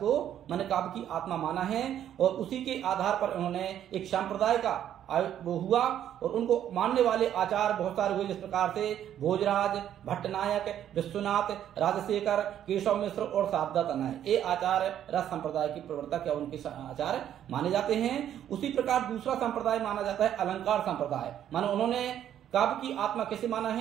माने काव्य की आत्मा माना है और उसी के आधार पर उन्होंने एक संप्रदाय का वो हुआ और उनको मानने वाले आचार बहुत सारे हुए, जिस प्रकार से भोजराज, भट्टनायक, विश्वनाथ, राजशेखर, केशव मिश्र और शारदा तनय, ये आचार्य रस संप्रदाय के प्रवर्तक या उनके आचार्य माने जाते हैं। उसी प्रकार दूसरा संप्रदाय माना जाता है अलंकार संप्रदाय। मानो उन्होंने काव्य की आत्मा कैसे माना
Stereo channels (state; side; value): quieter; left; 10.5 dB